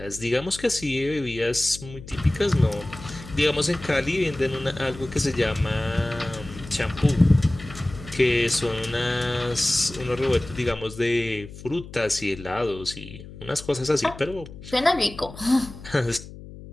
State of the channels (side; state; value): left; noise; hum, 15 dB below the sound